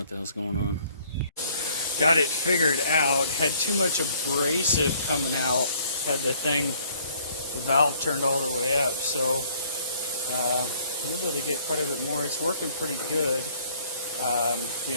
the hell's going on. Got it figured out. Had too much abrasive coming out. Had the valve turned all the way up. So we're able to get quite a bit more. It's working pretty good. The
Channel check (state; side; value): inverted; both; correlation -0.59